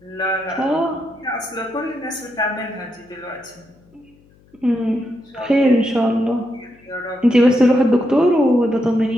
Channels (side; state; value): left; noise; hum, 30 dB below the sound